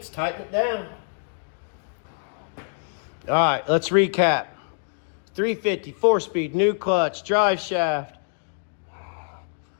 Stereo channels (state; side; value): silent; right; digital silence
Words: tighten it down. Alright, let's recap. 350, 4-speed, new clutch, drive shaft,